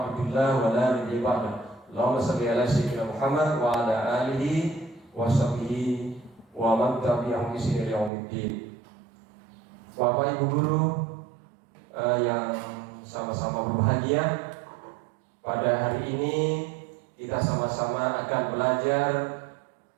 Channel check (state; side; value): drops out; left; at 8.1 s